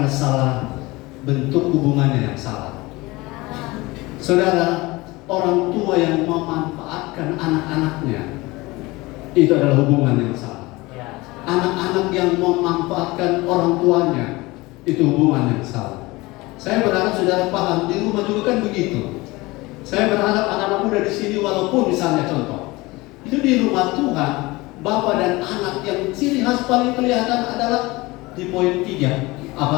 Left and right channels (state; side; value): quieter; right; 21.8 dB